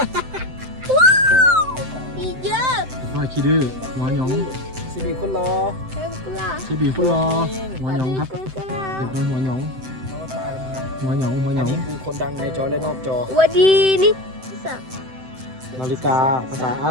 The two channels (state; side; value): late; left; 7.8 ms